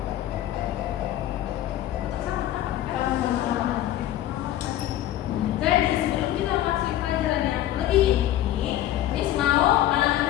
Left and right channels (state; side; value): quieter; right; 13.2 dB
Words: Jadi sebelum kita masuk pelajaran yang lebih inti, Miss mau